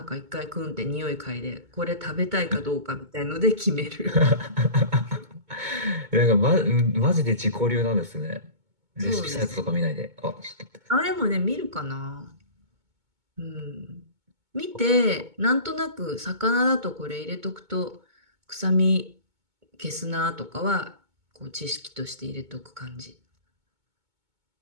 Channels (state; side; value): late; left; 2.2 ms